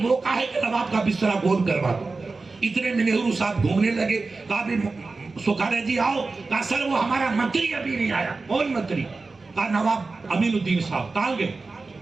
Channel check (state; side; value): quieter; left; 3.8 dB